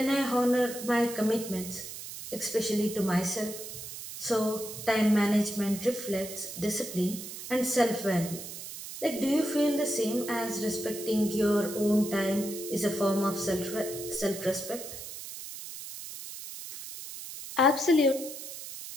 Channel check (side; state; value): right; noise; hiss, 10 dB below the sound